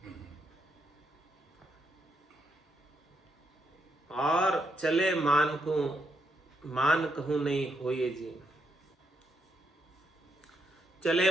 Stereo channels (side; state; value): both; normal; correlation 0.79